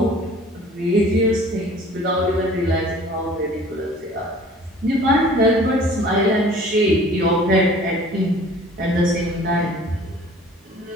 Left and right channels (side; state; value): both; normal; correlation 0.49